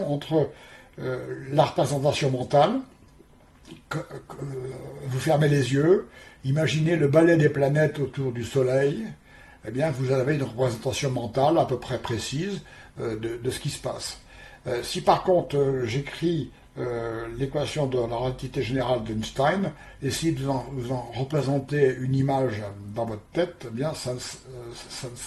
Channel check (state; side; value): identical; both; correlation 1.00